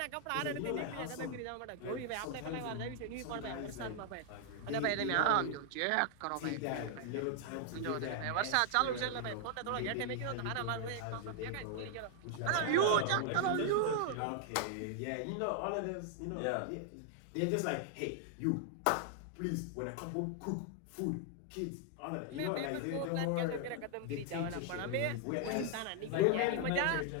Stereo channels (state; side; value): different; both; correlation 0.00